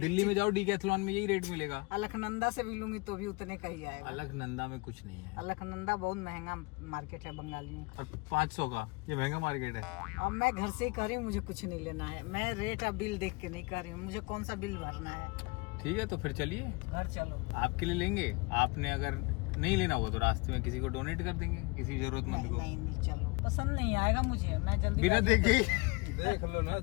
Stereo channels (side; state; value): right; quieter; 27.5 dB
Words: में जाओ डीकैथलॉन में यही रेट मिलेगा। अलकनंदा से भी लूंगी तो भी उतने का ही आएगा। अलकनंदा में कुछ नहीं है, अलकनंदा बहुत महंगा मार्केट है बंगाली में। और 500 का ये महंगा मार्केट है। अब मैं घर से ही कह रही हूँ, मुझे कुछ नहीं लेना है। मैं रेट अब बिल देख के नहीं कर रही हूँ, मुझे कौन सा बिल भरना है। ठीक है तो फिर चलिए, घर चलो। आपके लिए लेंगे। आपने अगर नहीं लेना होगा तो रास्ते में किसी को डोनेट कर देंगे, किसी जरूरतमंद को। नहीं चलो, पसंद नहीं आएगा मुझे, मैं जल्दी बिना देखे ही देख लो ना